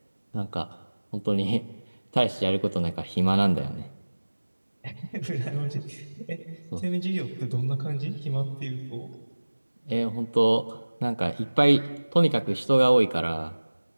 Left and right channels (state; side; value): inverted; both; correlation -1.00